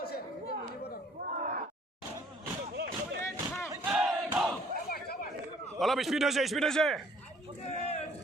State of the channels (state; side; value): normal; both; correlation 0.58